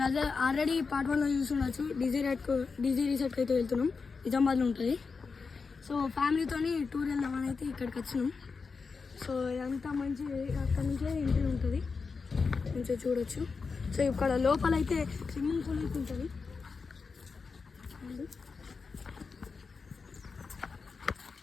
అదే ఆల్రెడీ పార్ట్ 1లో చూస్తుండొచ్చు. డీజీ రిసార్ట్కి అయితే వెళ్తున్నాం. నిజామాబాద్లో ఉంటుంది. సో ఫ్యామిలీతోని టూర్ వెళ్దామని అయితే ఇక్కడికి వచ్చినాం. సో ఇదంతా మంచి అక్కడ నుంచే ఎంట్రీ ఉంటుంది, మంచిగా చూడొచ్చు. సో ఇక్కడ లోపల అయితే స్విమ్మింగ్ పూల్ అయితే ఉంటుంది.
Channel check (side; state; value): right; quieter; 4.8 dB